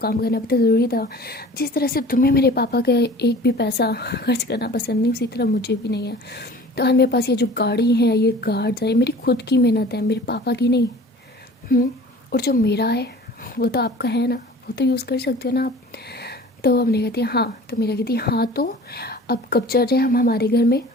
काम करना भी तो ज़रूरी था, जिस तरह से तुम्हें मेरे पापा का एक भी पैसा खर्च करना पसंद नहीं, उसी तरह मुझे भी नहीं है। तो आज मेरे पास ये जो गाड़ी है, ये गार्ड्स है, मेरी खुद की मेहनत है, मेरे पापा की नहीं। और जो मेरा है वो तो आपका है ना, वो तो यूज़ कर सकते हो ना आप। तो हमने कहती है हाँ, तो मेरा कहती है हाँ तो अब कब चल रहे हैं हम हमारे घर में।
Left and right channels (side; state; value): both; normal; correlation 0.44